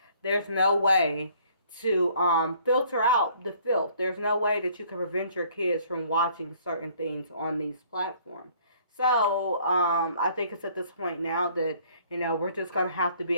there's no way to filter out the filth. There's no way that you can prevent your kids from watching certain things on these platforms. So I think it's at this point now that we're just gonna have to be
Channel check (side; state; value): both; inverted; correlation -0.59